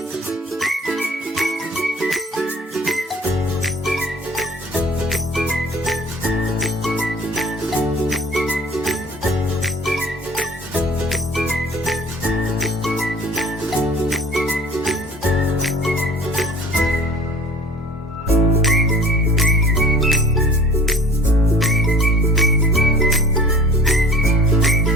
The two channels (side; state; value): both; normal; correlation 0.46